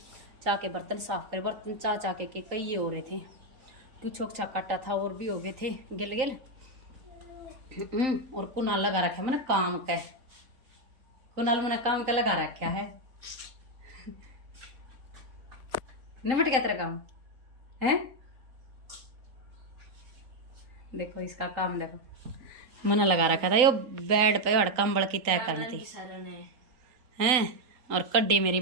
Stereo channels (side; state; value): left; late; 3.9 ms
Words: चाह के बर्तन साफ करे, बर्तन चाह के कई ये हो रहे थे। कुछ छोक काटा था और भी हो गए थे गिल गिल। और कुनाल लगा रखा मैंने काम का। कुनाल मैंने काम का लगा रखा है। निमट गया तेरा काम है। देखो इसका काम देखो, मैंने लगा रखा था यो बेड पे और कंबल की तय करनी थी हैं। और कड्डी मेरी